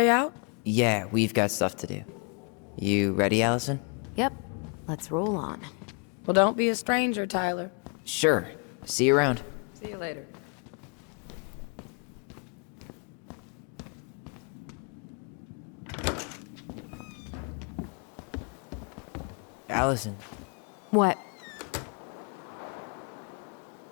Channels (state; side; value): quieter; right; 37.2 dB